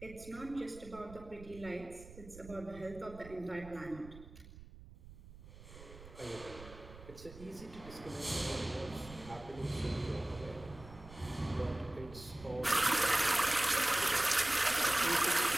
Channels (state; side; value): noise; right; rumble, 17 dB below the sound